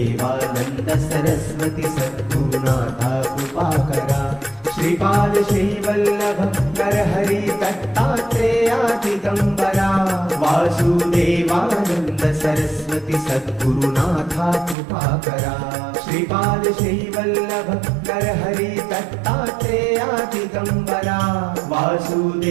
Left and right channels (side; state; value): left; drops out; at 14.8 s